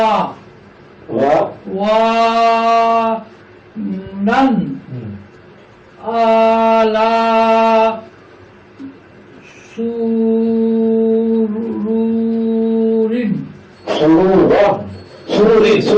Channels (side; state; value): both; identical; correlation 1.00